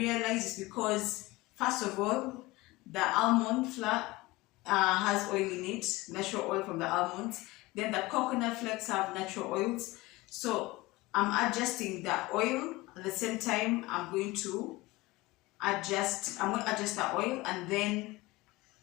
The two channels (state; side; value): quieter; right; 20.5 dB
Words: it's because first of all the almond flour has oil in it, natural oil from the almonds. Then the coconut flakes have natural oils. So I'm adjusting the oil at the same time. I'm going to adjust the oil, and then